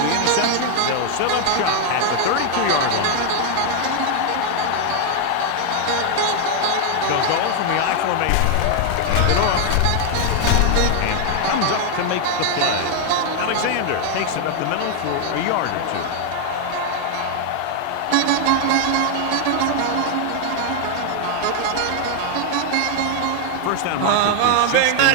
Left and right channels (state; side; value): different; both; correlation 0.00